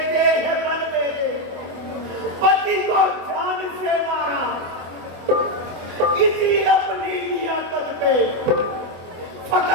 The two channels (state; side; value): late; left; 25 ms